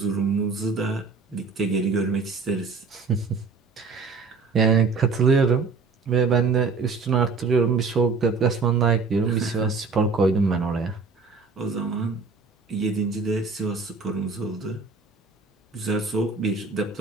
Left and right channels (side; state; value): left; quieter; 4.6 dB